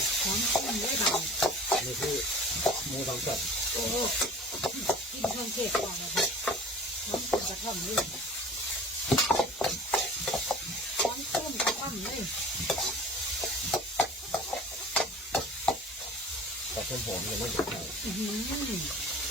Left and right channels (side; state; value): both; normal; correlation 0.43